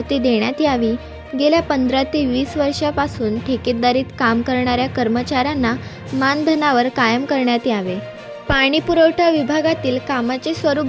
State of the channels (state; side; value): identical; both; correlation 1.00